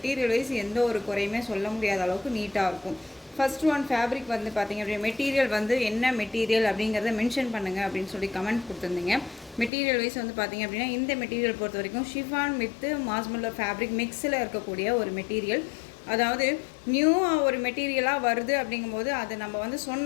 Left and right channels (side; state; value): right; drops out; at 9.7 s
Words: வைஸ் எந்த ஒரு குறையுமே சொல்ல முடியாத அளவுக்கு நீட்டாக இருக்கும். ஃபர்ஸ்ட் ஒன் ஃபேப்ரிக் வந்து பார்த்திங்க அப்படின்னா மெட்டீரியல் வந்து என்ன மெட்டீரியல் அப்படிங்கிறத மென்ஷன் பண்ணுங்கள் அப்படின்னு சொல்லி கமெண்ட் கொடுத்துருந்தீங்க. மெட்டீரியல் வைஸ் வந்து பார்த்திங்க அப்படின்னா இந்த மெட்டீரியல் பொறுத்த வரைக்கும் ஷிஃபான் வித் மாஸ்மல்லர் ஃபேப்ரிக் மிக்ஸில் இருக்கக்கூடிய ஒரு மெட்டீரியல். அதாவது நியூவாக ஒரு மெட்டீரியலாக வருது அப்படிங்கும்போது அதை நம்ம வந்து